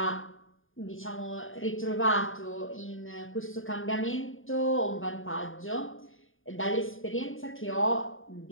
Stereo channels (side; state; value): right; late; 0.59 ms